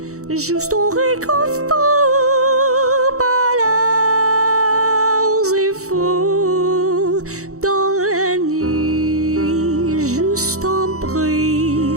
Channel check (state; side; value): late; left; 0.65 ms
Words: juste on réconfort, pas leurs efforts, dans la nuit, juste un bruit,